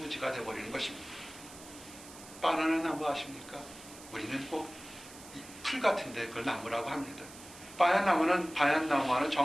되어버리는 것입니다. 바나나 나무 아십니까? 우리는 꼭 풀 같은데 그걸 나무라고 합니다. 반얀나무와는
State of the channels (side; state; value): right; noise; hiss, 17 dB below the sound